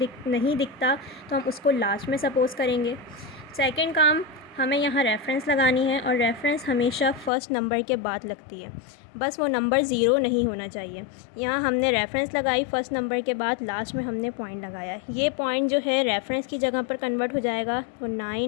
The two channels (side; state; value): right; drops out; at 7.3 s